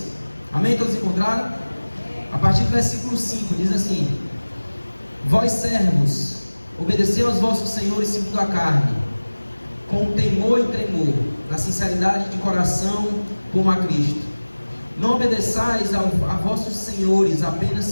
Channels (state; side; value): inverted; both; correlation -1.00